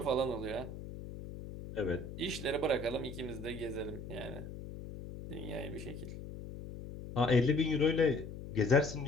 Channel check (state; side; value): noise; left; hum, 10 dB below the sound